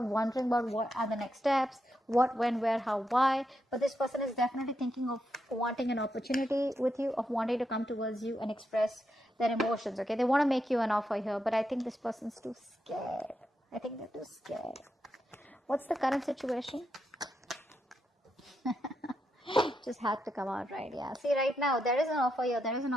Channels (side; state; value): both; normal; correlation 0.83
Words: wondering about what are the next steps, what, when, where, how, why. But this person is definitely thinking of wanting an opportunity with you, of wanting to come towards you and express their emotions, okay. They want to make you an offer here, but I think this person's too scared. I think they're too scared. What's the current situation? Just had to come out, right? Yeah, see, right now there is an offer here, there is an